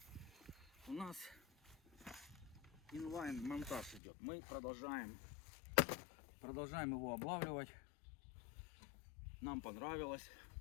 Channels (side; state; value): right; drops out; at 4.0 s